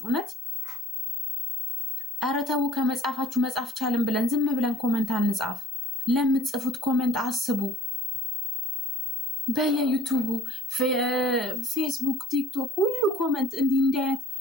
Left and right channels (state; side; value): normal; both; correlation 0.50